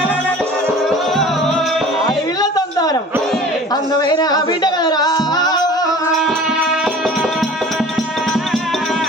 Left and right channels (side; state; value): both; normal; correlation 0.43